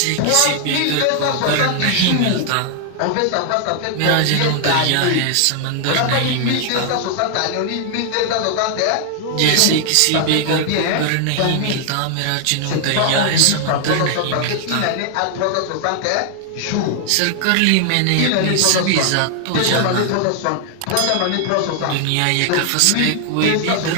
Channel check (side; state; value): both; different; correlation 0.00